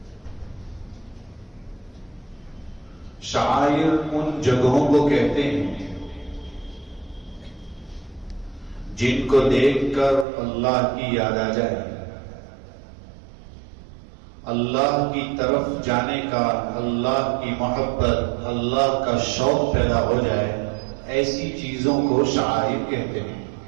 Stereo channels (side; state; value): left; drops out; at 10.2 s